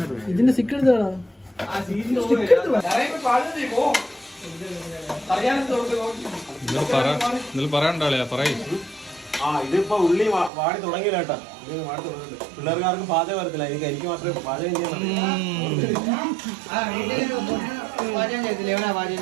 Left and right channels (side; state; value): left; drops out; at 10.5 s